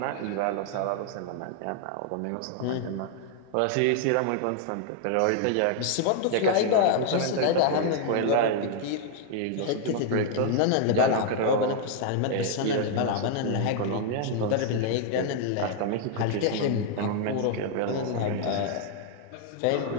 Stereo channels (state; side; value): different; both; correlation 0.00